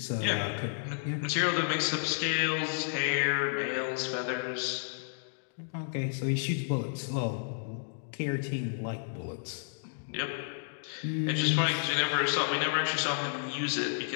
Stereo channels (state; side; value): silent; right; digital silence